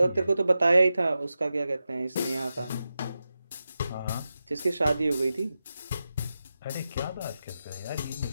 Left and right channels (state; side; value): inverted; both; correlation -0.91